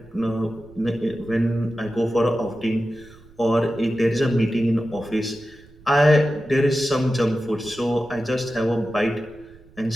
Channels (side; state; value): right; noise; rumble, 24 dB below the sound